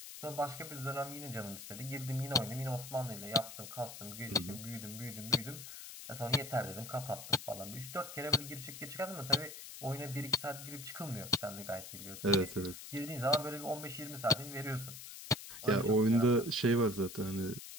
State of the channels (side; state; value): left; noise; hiss, 12 dB below the sound